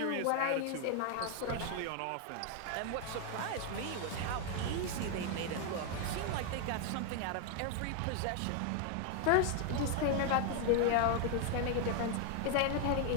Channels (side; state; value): both; different; correlation 0.00